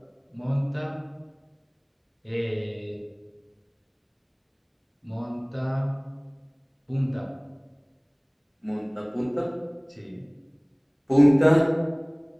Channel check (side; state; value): both; identical; correlation 1.00